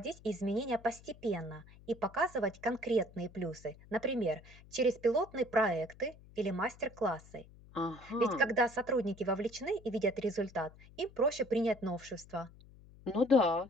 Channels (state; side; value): noise; left; hum, 22 dB below the sound